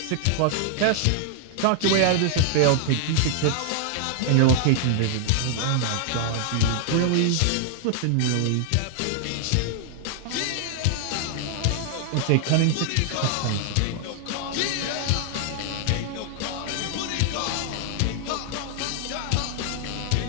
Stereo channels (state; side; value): different; both; correlation 0.00